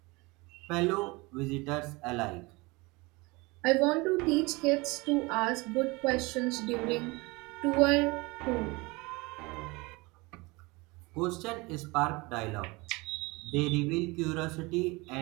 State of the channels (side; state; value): left; quieter; 24.7 dB